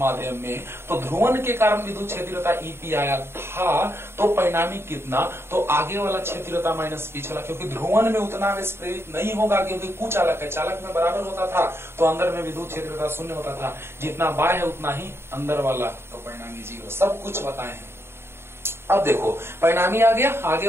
में, तो ध्रुवन के कारण विद्युत क्षेत्रता ईपी आया था। तो परिणामी कितना? तो आगे वाला क्षेत्रता माइनस पिछला, क्योंकि ध्रुवन में उतना आवेश प्रेरित नहीं होगा, क्योंकि कुचालक है। चालक में बराबर होता था तो अंदर में विद्युत क्षेत्रता शून्य होता था। जितना बाह्य है उतना ही अंदर वाला, तो परिणामी 0। सब कुछ बताए हैं। अब देखो, परिणामी आ गया, आगे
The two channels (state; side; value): late; left; 0.12 ms